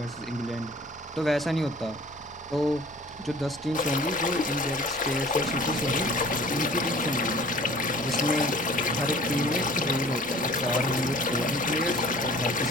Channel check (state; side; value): normal; both; correlation 0.48